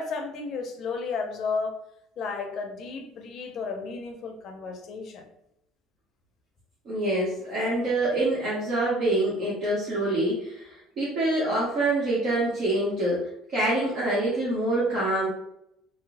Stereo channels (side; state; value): both; normal; correlation 0.51